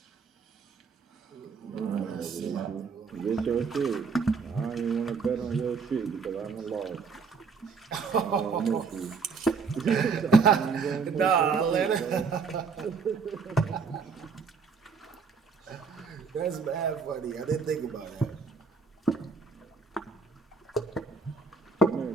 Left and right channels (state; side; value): quieter; left; 5.0 dB